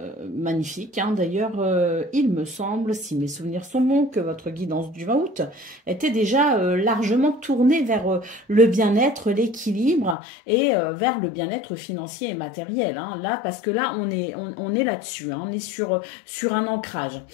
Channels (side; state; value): right; drops out; at 10.2 s